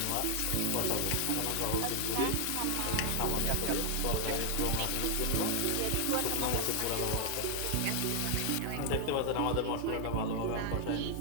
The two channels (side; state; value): both; different; correlation 0.00